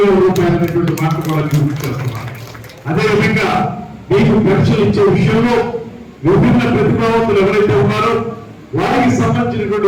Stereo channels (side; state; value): both; identical; correlation 1.00